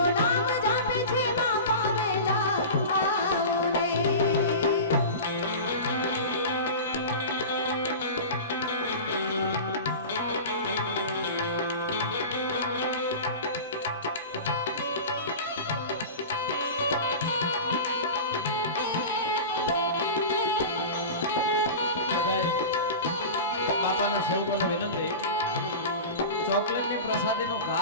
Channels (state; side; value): inverted; both; correlation -0.30